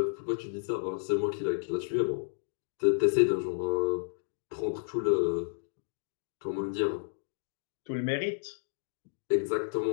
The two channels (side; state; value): right; silent; digital silence